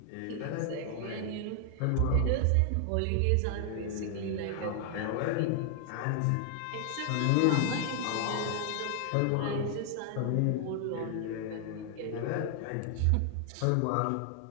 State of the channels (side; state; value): both; different; correlation 0.00